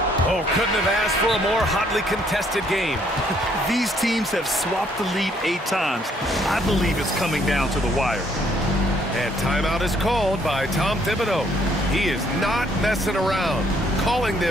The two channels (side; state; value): both; normal; correlation 0.67